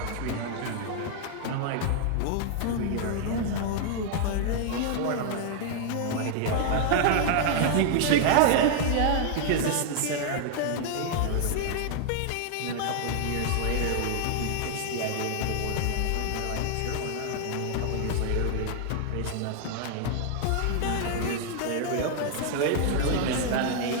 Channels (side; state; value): both; different; correlation 0.00